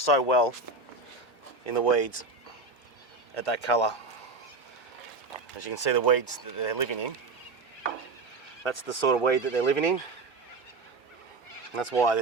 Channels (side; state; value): left; quieter; 3.6 dB